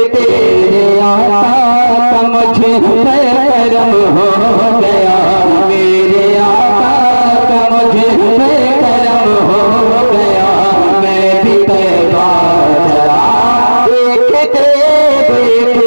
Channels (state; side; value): inverted; both; correlation -1.00